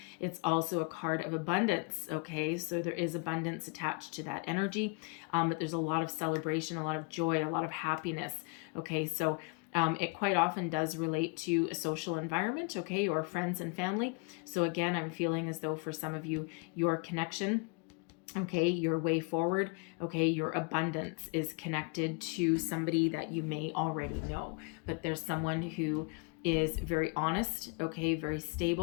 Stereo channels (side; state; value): right; quieter; 30.3 dB